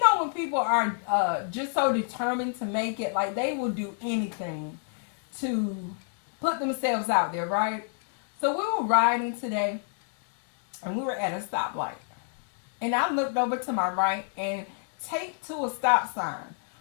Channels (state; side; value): silent; right; digital silence